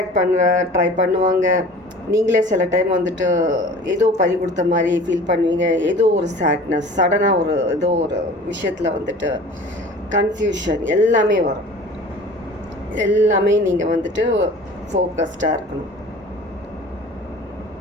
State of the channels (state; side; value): normal; both; correlation 0.43